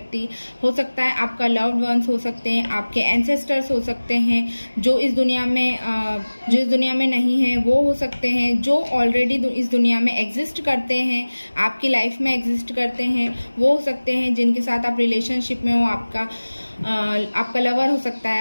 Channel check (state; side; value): inverted; both; correlation -1.00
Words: हो सकता है, आपका लव्ड वंस हो सकते हैं, आपके एंसेस्टर्स हो सकते हैं, जो इस दुनिया में नहीं है वो हो सकते हैं, जो ऑलरेडी इस दुनिया में एग्जिस्ट करते हैं, आपकी लाइफ में एग्जिस्ट करते हैं, वो हो सकते हैं जिनके साथ आप रिलेशनशिप में हो। आपका लवर हो सकता है,